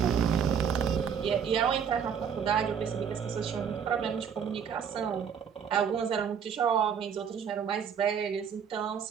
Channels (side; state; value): left; quieter; 7.4 dB